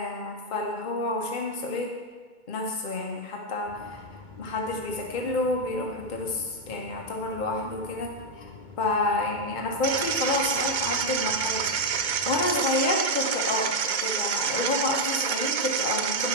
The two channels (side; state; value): right; late; 2.2 ms